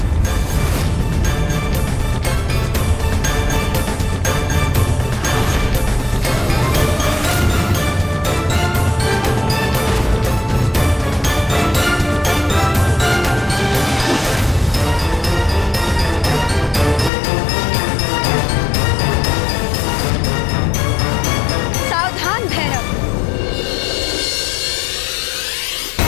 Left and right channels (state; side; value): drops out; right; at 17.1 s